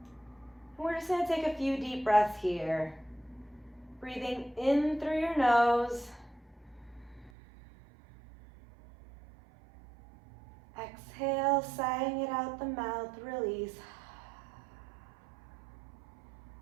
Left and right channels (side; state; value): left; drops out; at 7.3 s